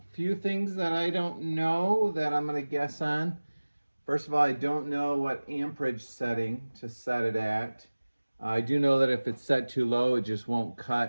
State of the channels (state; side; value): inverted; both; correlation -1.00